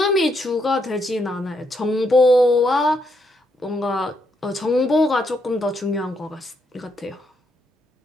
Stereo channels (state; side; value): normal; both; correlation 0.77